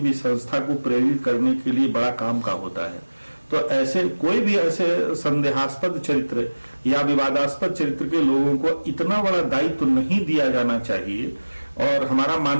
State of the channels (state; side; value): inverted; both; correlation -1.00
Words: संस्था को प्रेरित करने के लिए बड़ा काम का होता है। तो ऐसे कोई भी ऐसे संदेहास्पद चरित्र या विवादास्पद चरित्र के लोगों को इतना बड़ा दायित्व नहीं दिया जाना चाहिए। और हमारा